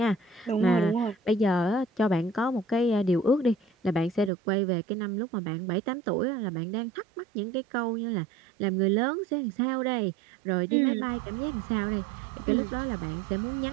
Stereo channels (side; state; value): left; drops out; at 4.3 s